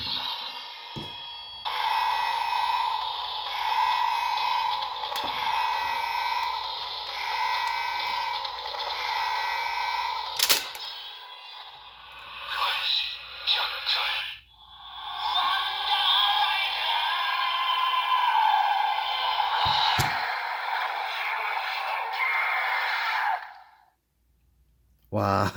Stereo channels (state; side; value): identical; both; correlation 1.00